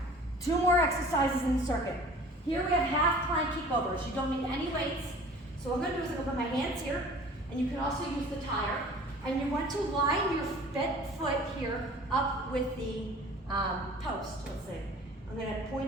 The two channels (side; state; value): both; normal; correlation 0.46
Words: 2 more exercises in the circuit. Here we have half plank kickovers. You don't need any weights. So what I'm gonna do is I'm gonna put my hands here, and you can also use the tire. And you want to line your foot here up with the post, let's see. I'm gonna